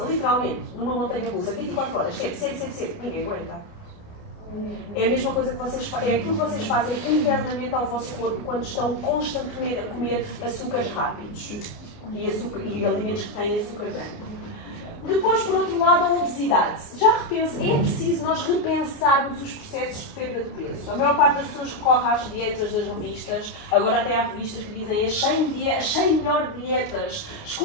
literalmente, numa montanha russa, 24 horas, sempre, ninguém aguenta. É a mesma coisa que vocês fazem, é aquilo que vocês fazem internamente ao vosso corpo quando estão constantemente a comer açúcares rápidos e alimentos que têm açúcar branco. Depois, por outro lado, a obesidade. É preciso nós repensarmos os processos de perda de peso. A maior parte das pessoas recorre às dietas das revistas, agora até há revistas que dizem as 100 melhores dietas,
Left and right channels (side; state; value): right; late; 29 ms